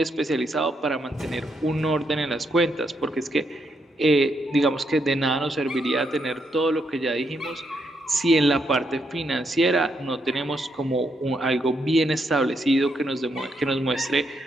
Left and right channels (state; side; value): normal; both; correlation 0.78